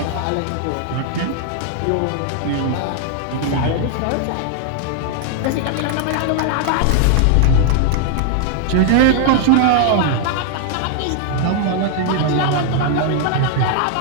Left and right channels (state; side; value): different; both; correlation 0.00